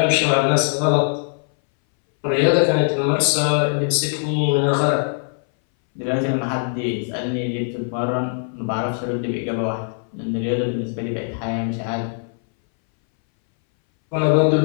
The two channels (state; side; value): silent; right; 62 dB below the other